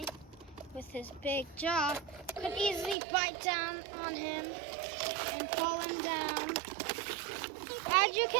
with his big jaw, could easily bite down on him and pull him down. As you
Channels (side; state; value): left; drops out; at 3.0 s